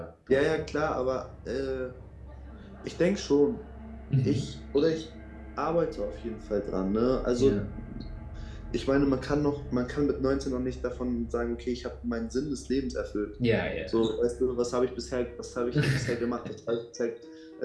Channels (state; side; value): identical; both; correlation 1.00